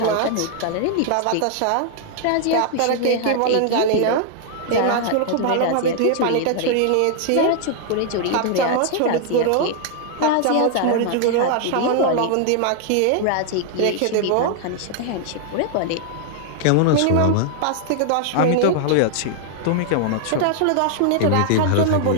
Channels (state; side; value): different; both; correlation 0.00